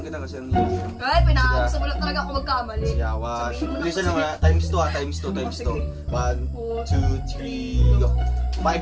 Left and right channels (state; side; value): identical; both; correlation 1.00